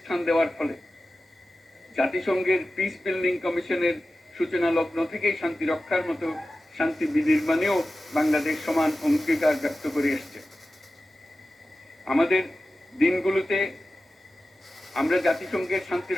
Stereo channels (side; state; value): both; normal; correlation 0.94